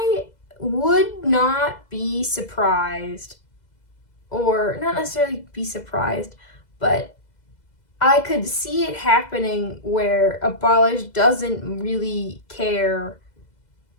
would not be surprised, or not necessarily be surprised, but I could see it happening where Abolish doesn't really care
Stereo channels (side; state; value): right; late; 2.0 ms